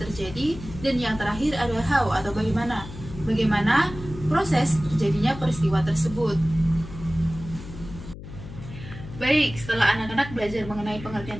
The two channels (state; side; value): noise; left; hum, 13 dB below the sound